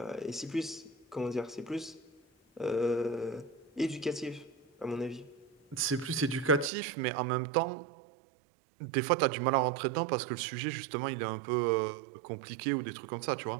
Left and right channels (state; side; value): drops out; left; at 6.7 s